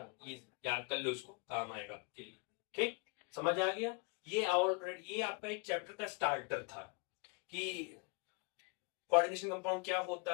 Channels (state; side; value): quieter; right; 32.2 dB